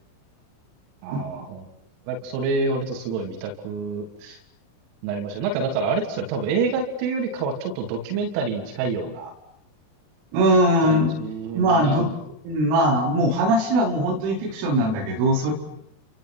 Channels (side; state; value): left; late; 36 ms